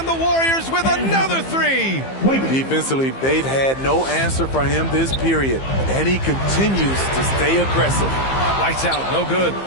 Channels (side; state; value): right; late; 15 ms